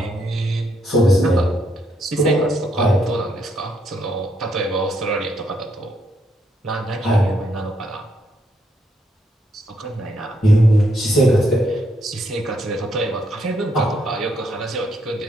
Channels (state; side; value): normal; both; correlation 0.75